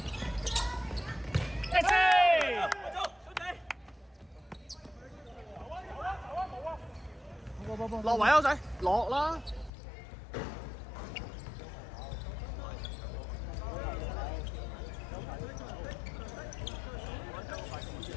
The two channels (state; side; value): drops out; right; at 9.7 s